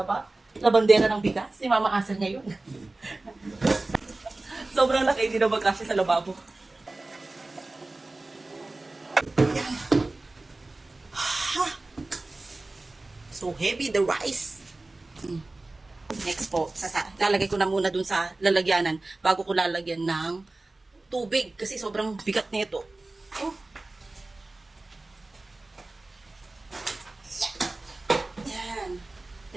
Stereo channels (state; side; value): quieter; left; 3.0 dB